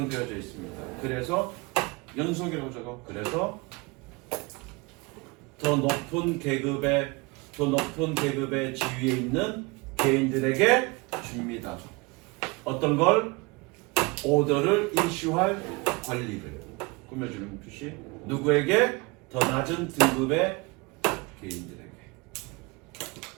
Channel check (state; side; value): quieter; left; 26.6 dB